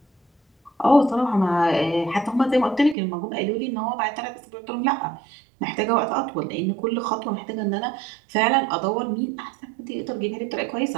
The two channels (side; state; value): left; drops out; at 3.0 s